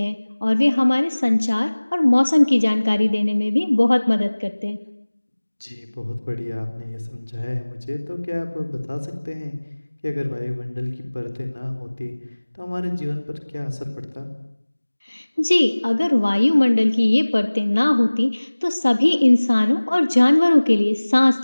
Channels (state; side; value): inverted; both; correlation -1.00